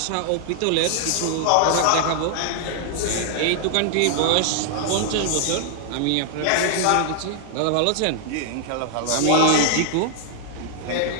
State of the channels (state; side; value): different; both; correlation 0.00